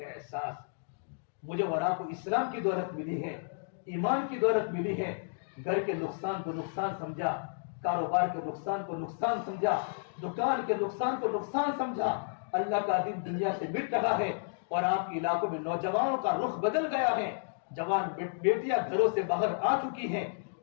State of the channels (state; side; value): silent; right; digital silence